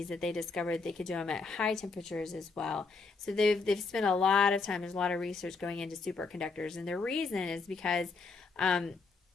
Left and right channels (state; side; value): quieter; right; 4.2 dB